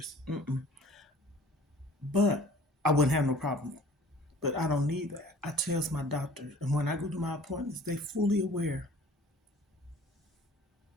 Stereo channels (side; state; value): both; normal; correlation 0.49